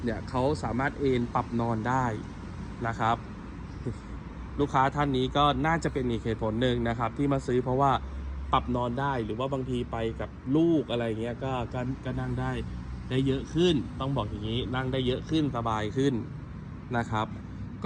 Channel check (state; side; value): identical; both; correlation 1.00